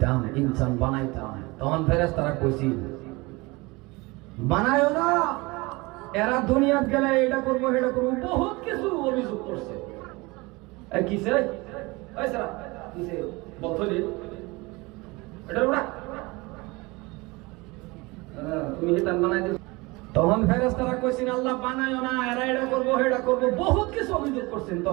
ইনসান বানাইতাম। তখন ফেরেশতারা কইছিল বানায়ও না, এরা দুনিয়াত গেলে এটা করবো সেটা করবো, বহুত কিছু অভিযোগ করছে। কিসে কিসে বললি এটা ওরা তুমি এটা বানাই দিও। তখন ফেরেশতারা কইছেন আল্লাহ বানায়ও না, এরা এটা করবো সেটা করবো, বহুত কিছু অভিযোগ করছেন।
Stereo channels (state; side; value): quieter; left; 24.1 dB